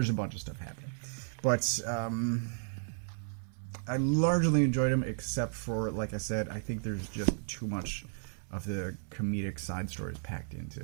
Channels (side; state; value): left; silent; 55 dB below the other